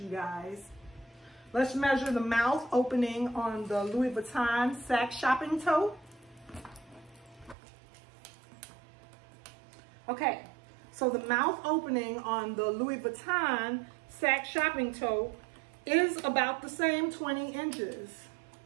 guys. Let's measure the mouth opening on the Louis Vuitton sack shopping tote. Okay, so the mouth opening on the Louis Vuitton sack shopping tote is about the same 20 inches.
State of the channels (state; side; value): drops out; left; at 7.6 s